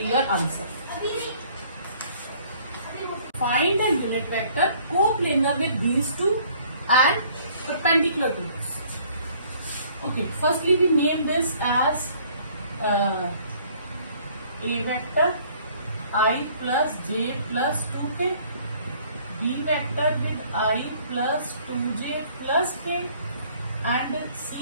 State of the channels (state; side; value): inverted; both; correlation -0.58